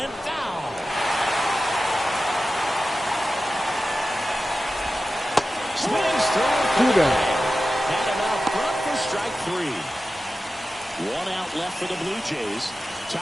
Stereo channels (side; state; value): both; normal; correlation 0.94